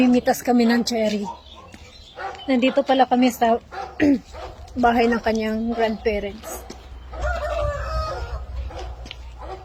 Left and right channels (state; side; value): identical; both; correlation 1.00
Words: kami ng cherry. Nandito pala kami sa bahay ng kanyang grandparents.